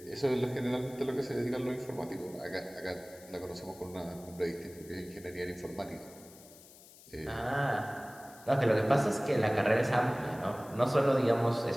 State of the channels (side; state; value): left; noise; hiss, 21 dB below the sound